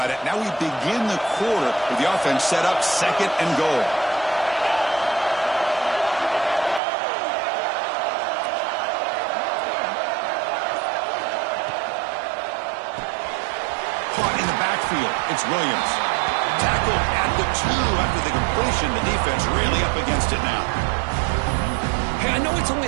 it. Now we begin the quarter with the offense set up second and goal. Caught in the backfield. It's Williams. Tackled at the 2 after the completion. The defense really up against it now. Hey, I know it's only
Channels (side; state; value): left; drops out; at 6.8 s